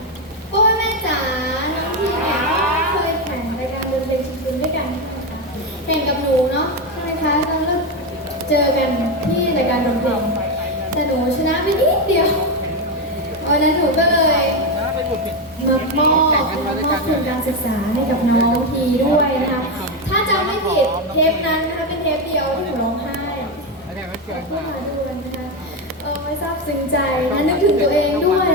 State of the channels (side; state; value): both; normal; correlation 0.10